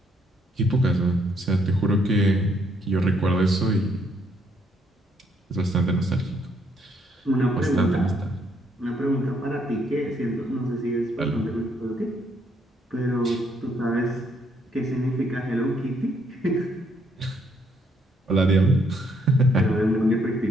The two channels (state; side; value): normal; both; correlation 0.71